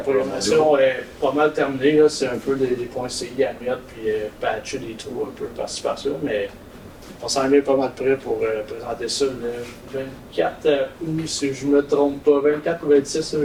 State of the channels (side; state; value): both; identical; correlation 1.00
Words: est pas mal terminée. Là. C'est un peu des points CI à mettre, puis patcher des trous un peu par-ci par-là. Mais on s'en est pas mal prêt pour présenter ça le 24 août, si je me trompe pas. 24 ou 26, là,